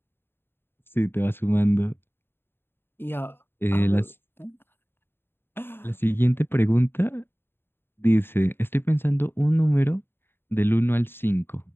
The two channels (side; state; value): right; late; 0.11 ms